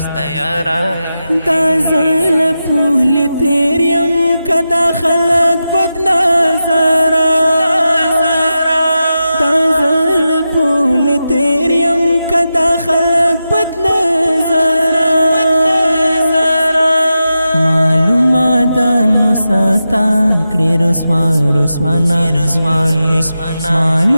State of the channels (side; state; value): both; inverted; correlation -0.91